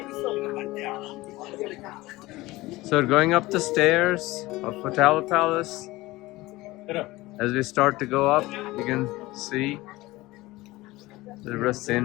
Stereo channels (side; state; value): right; quieter; 19.5 dB